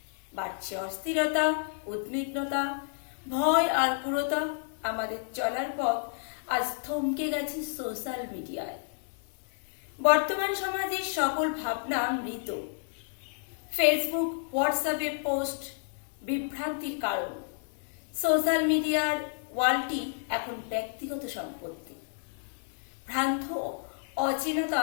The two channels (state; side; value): silent; right; digital silence